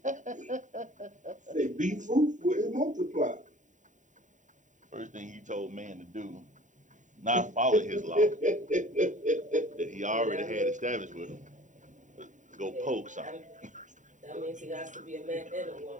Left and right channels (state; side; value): late; left; 0.36 ms